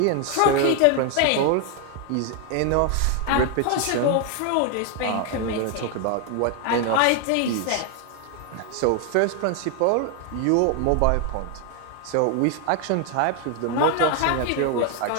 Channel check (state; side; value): different; both; correlation 0.01